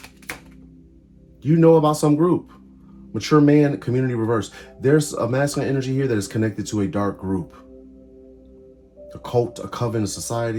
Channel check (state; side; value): identical; both; correlation 1.00